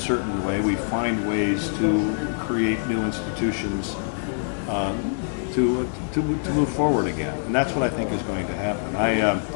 way, we find ways to create new institutions to move forward again, and that's what I think is going to happen.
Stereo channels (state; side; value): silent; right; digital silence